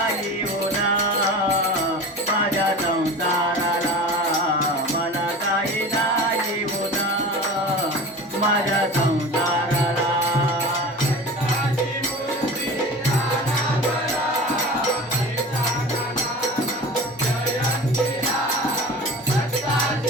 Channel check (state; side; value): normal; both; correlation 0.35